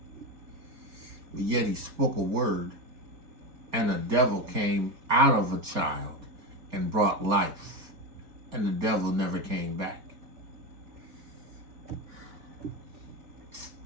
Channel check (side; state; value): left; late; 4.4 ms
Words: But yet he spoke a word and a devil came out of a child and brought life. And the devil never came back.